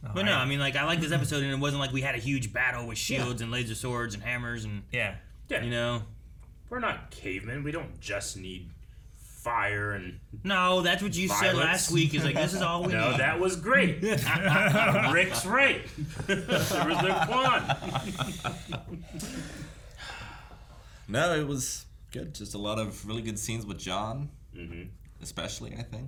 But no, I mean, like I like this episode, and it wasn't like we had a huge battle with shields and laser swords and hammers and Yeah. you know. We're not cavemen. We don't just need fire and. No, that's what you said last week. Is like this is all we No, need. that was great. Rick's right. There was no Quan. No, it was good. Just a lot of really good scenes with John, especially, I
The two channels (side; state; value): both; identical; correlation 1.00